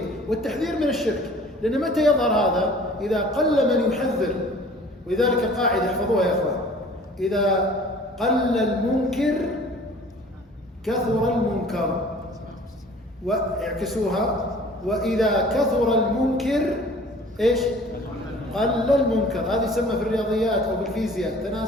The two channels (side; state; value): both; normal; correlation 0.49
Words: والتحذير من الشرك. لأن متى يظهر هذا؟ إذا قل من يحذر. ولذلك القاعدة احفظوها يا أخوان: إذا قل المنكر كثر المنكر. واعكسوها: وإذا كثر المنكر إيش؟ قل المنكر. هذه يسمى في الرياضيات أو بالفيزياء